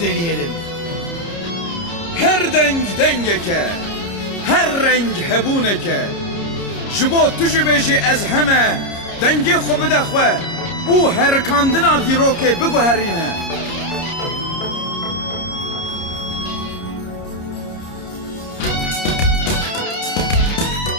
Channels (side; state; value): right; late; 30 ms